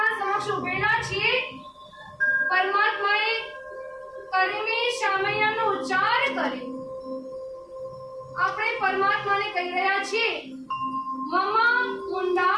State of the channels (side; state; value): both; identical; correlation 1.00